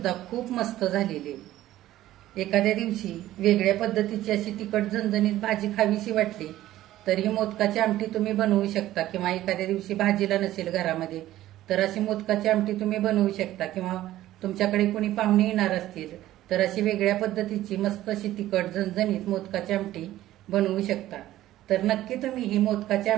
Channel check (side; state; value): left; quieter; 14.4 dB